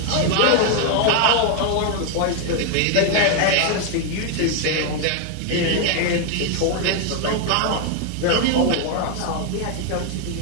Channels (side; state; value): both; different; correlation 0.00